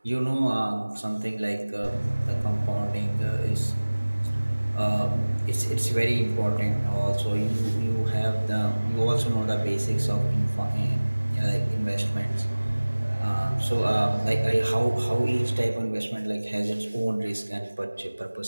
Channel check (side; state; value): both; inverted; correlation -1.00